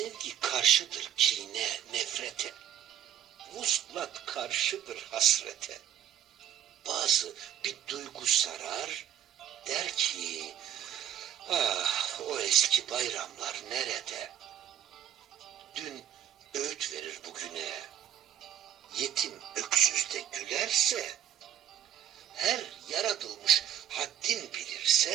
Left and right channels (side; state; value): left; quieter; 10.5 dB